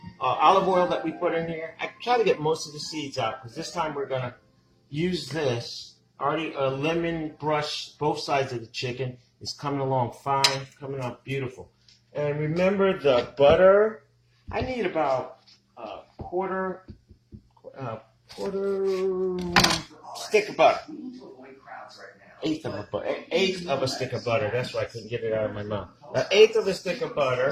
olive oil that we put in here? I try to get most of the seeds out, because this time we're going to use this. Already a lemon brush both sides of the chicken. It's coming along fine, coming out beautiful. And remember the butter. I need about a quarter stick of butter. Eighth of a stick of butter. That's why I couldn't get it out of my mouth. An eighth of a stick of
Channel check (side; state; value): both; identical; correlation 1.00